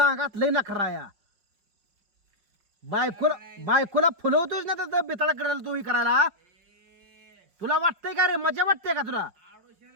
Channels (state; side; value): late; left; 5.6 ms